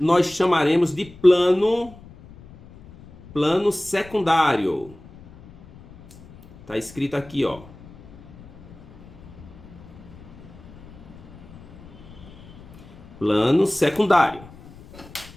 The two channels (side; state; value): left; noise; rumble, 20 dB below the sound